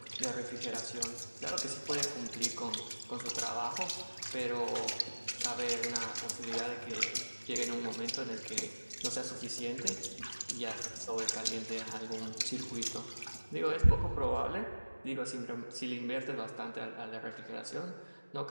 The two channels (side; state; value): both; inverted; correlation -1.00